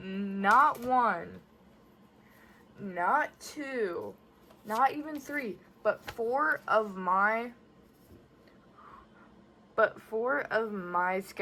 one, not two, not even three, but four of my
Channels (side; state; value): both; identical; correlation 1.00